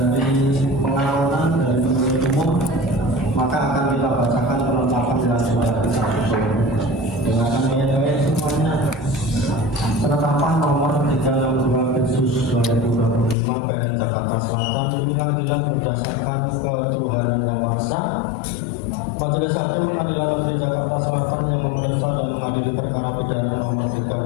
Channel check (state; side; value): drops out; right; at 13.4 s